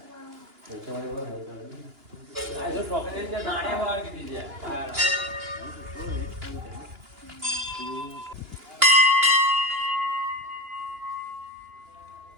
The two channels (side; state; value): left; late; 2.9 ms